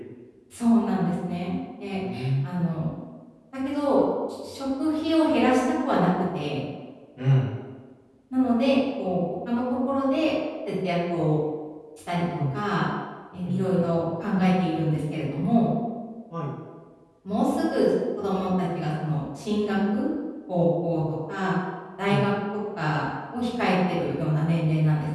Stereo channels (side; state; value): both; identical; correlation 1.00